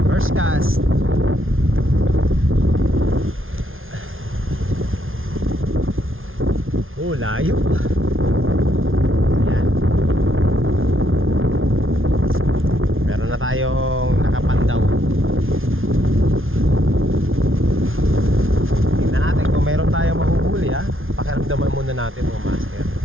First cast. Oh, layo. Ayan. Meron na tayong nakapandaw. Tingnan natin kung meron tayong mahuhuli ha. Pakiramdaman muna natin mga master.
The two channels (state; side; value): late; left; 0.59 ms